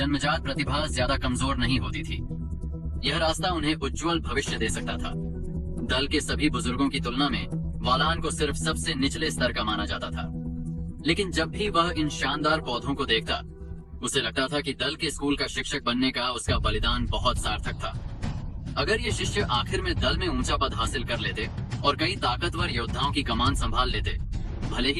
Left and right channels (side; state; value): both; identical; correlation 1.00